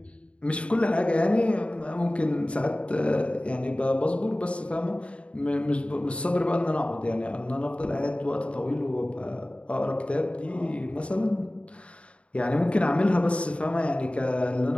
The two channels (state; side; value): late; right; 0.061 ms